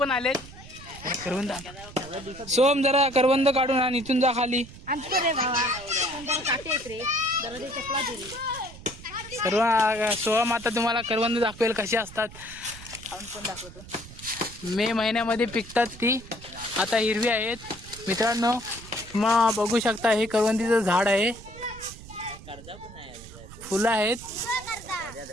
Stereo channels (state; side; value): noise; right; rumble, 17 dB below the sound